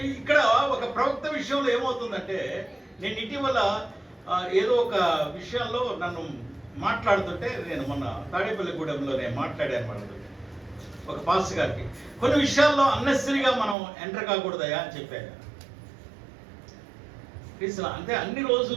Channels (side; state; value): left; drops out; at 13.8 s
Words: ఇక్కడ ఒక ప్రవక్త విషయంలో ఏమవుతుందంటే, నేను ఇటీవల ఏదో ఒక విషయంలో నన్ను మాట్లాడుతుంటే నేను మొన్న తాడేపల్లిగూడెంలో నేను మాట్లాడాను వాళ్ళతో ఒక పాస్టర్ గారికి. కొన్ని విషయాల్లో అన్నెసరీగా మనం ఎంటర్ కాకూడదయా అని చెప్పాను. అంటే అన్ని